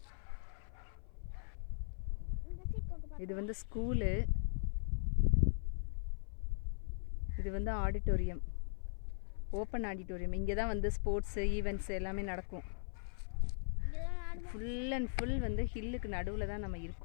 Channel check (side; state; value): right; silent; 52 dB below the other